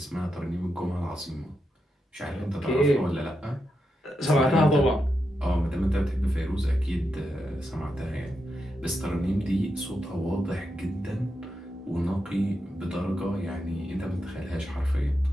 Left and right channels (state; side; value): normal; both; correlation 0.86